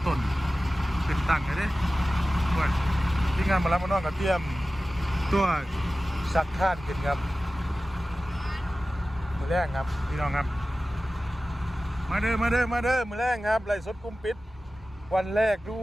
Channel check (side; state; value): both; normal; correlation 0.95